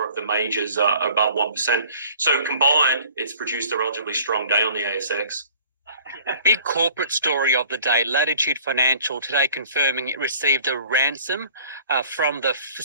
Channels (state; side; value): inverted; both; correlation -0.50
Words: of the majors are above 1%. So combined, it's produced a relatively strong day on the ASX. Big corporate story of the day, Latitude Financial today confirming it received a ransom from the